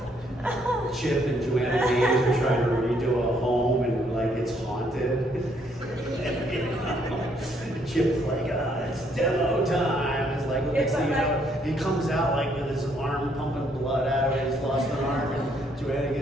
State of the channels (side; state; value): both; normal; correlation 0.69